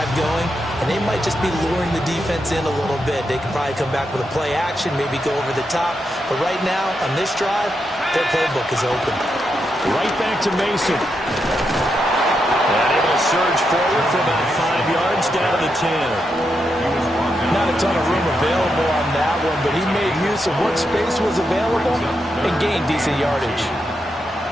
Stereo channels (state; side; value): normal; both; correlation 0.84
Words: going, and they might just be luring the defense in a little bit. They can probably come back with a play action, maybe go over the top. But right now, on this drive, their playbook is open. Right back to Mason. And able to surge forward for about 5 yards down to the 10. Not a ton of room available on that one, but he made use of what space was available and gained decent yardage.